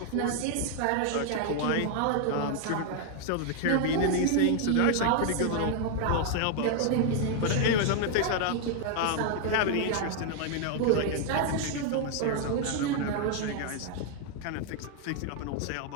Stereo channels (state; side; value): different; both; correlation 0.00